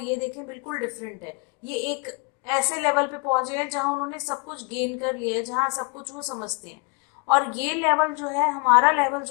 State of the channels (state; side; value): quieter; right; 32.5 dB